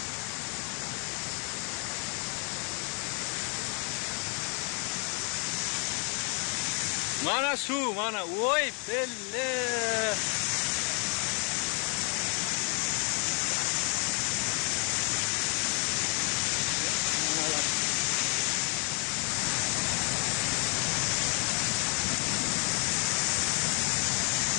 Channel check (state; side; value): quieter; right; 38.9 dB